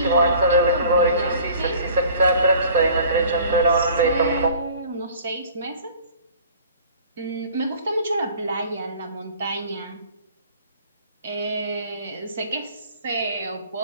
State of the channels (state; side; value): inverted; both; correlation -0.49